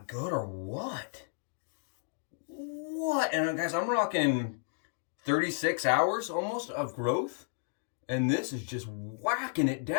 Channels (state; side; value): silent; right; digital silence